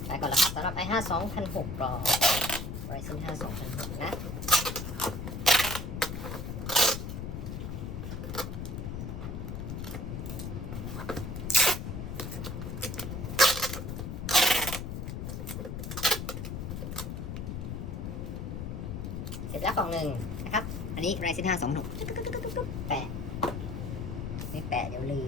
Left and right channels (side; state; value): left; noise; rumble, 5 dB below the sound